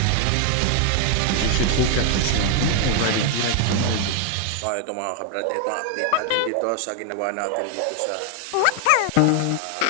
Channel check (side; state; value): both; different; correlation 0.00